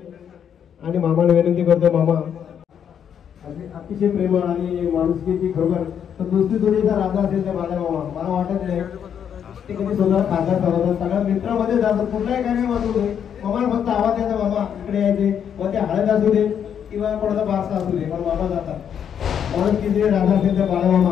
आणि मामाला विनंती करतोय मामा अतिशय प्रेमळ आणि माणुसकीची खरोखर तर दुसरी जोडीचा राजा असेल त्या माझ्या मामा मला वाटत नाही ते कधी स्वतः खासदार चालवतात सगळ्या मित्रामध्ये जातात कुठलाही कार्यक्रम असू दे मामाला फक्त आवाज द्यायचा मामा इकडे यायचे मग ते हळद असू दे किंवा कोणाचा बारसा असू दे पण मामा जातात माणुसकीचे राजा असेल त्या बाळा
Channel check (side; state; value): right; quieter; 8.4 dB